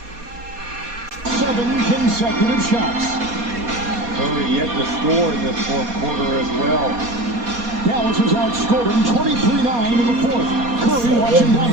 Consecutive shots. Curry yet to score in this fourth quarter as well. Dallas has outscored him 23-9 in the fourth. Curry watching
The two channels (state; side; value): late; left; 4.2 ms